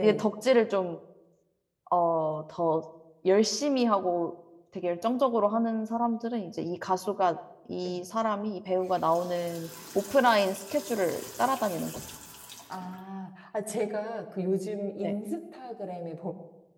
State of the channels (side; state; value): both; identical; correlation 1.00